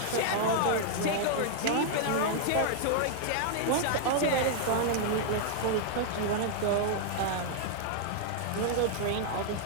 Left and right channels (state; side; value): different; both; correlation -0.01